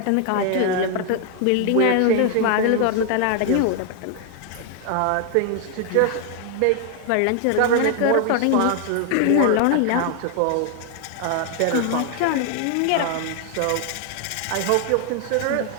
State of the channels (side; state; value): both; different; correlation 0.00